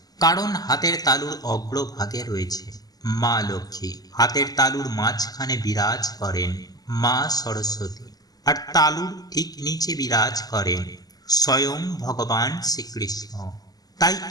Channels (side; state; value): right; late; 0.19 ms